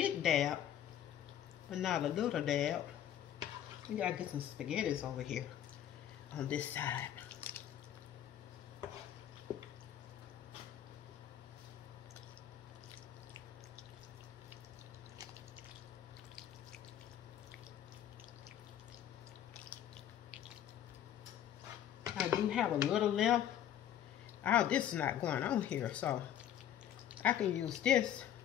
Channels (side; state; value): right; quieter; 10.7 dB